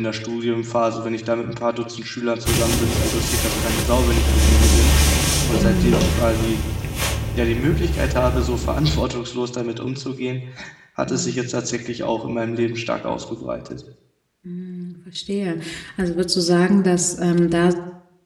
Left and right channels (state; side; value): identical; both; correlation 1.00